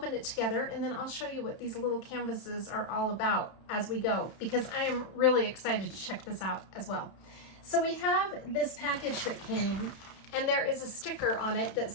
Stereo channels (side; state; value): right; late; 31 ms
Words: it together and then I'll show you what these little canvases are all about as we go, because I am really excited to check this out as well. So we have this package that came, and there is a sticker on it that